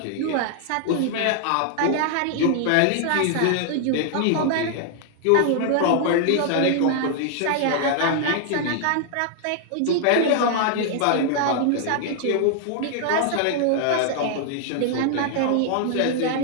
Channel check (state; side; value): different; both; correlation 0.00